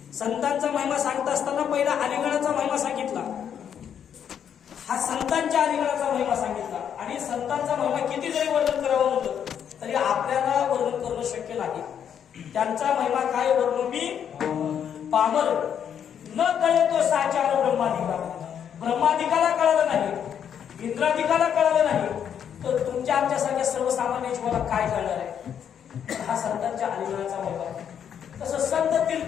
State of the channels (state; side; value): quieter; right; 8.6 dB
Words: संतांचा महिमा सांगत असताना पहिला अलिंगनाचा महिमा सांगितला. हा संतांच्या अलिंगनाचा महिमा सांगितला. आणि संतांचा महिमा किती जरी वर्णन करावं म्हटलं तरी आपल्याला वर्णन करणं शक्य नाही. त्यांचा महिमा काय वर्णन मी पामर न कळे तो साचार ब्रह्मादिका. ब्रह्मादिकाला कळालं नाही, इंद्रादिकाला कळालं नाही, तर तुमच्या आमच्यासारख्या सर्वसामान्य जीवाला काय कळणार आहे. हा संतांच्या अलिंगनाचा महिमा. तसं संत